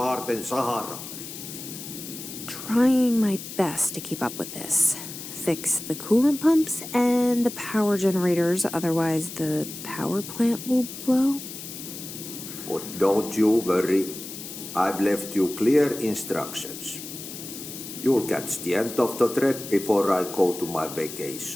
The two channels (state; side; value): noise; left; hiss, 11 dB below the sound